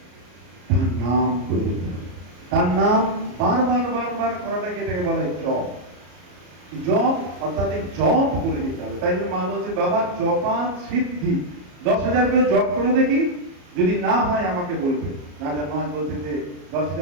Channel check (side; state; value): left; late; 34 ms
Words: তার নাম করে দিতে হবে। তার নাম বারবার বারবার করাটাকে এটাকে বলা হয় জপ। জপ অর্থাৎ এই জপ করে দিতে হবে। তাই জন্য মা বলছে বাবা জপা সিদ্ধি, 10,000 করে জপ করে দেখি, যদি না হয় আমাকে বলবে। রাজা মহারাজ বলতে যে